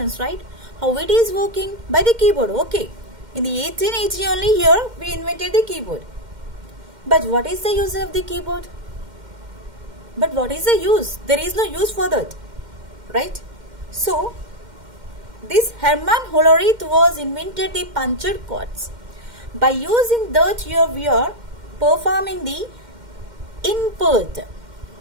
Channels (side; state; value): left; late; 2.1 ms